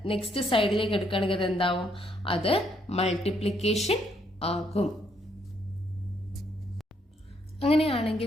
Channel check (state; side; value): normal; both; correlation 0.72